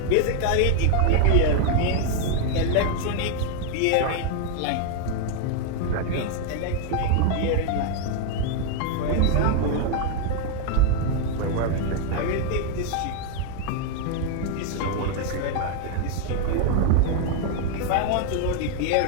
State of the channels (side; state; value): both; different; correlation 0.00